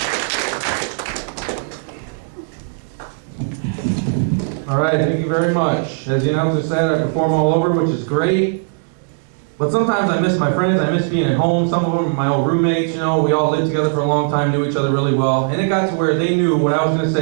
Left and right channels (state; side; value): silent; left; digital silence